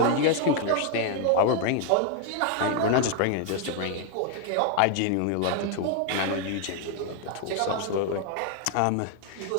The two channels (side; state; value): both; different; correlation 0.00